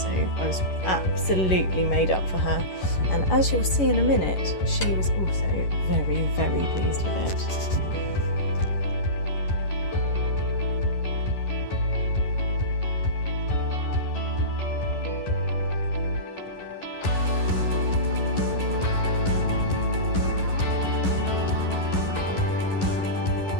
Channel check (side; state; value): right; late; 11 ms